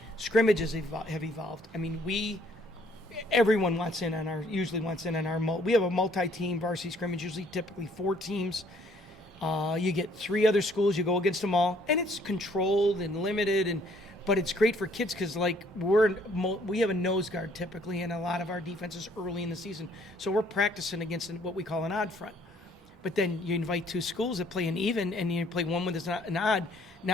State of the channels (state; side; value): normal; both; correlation 0.63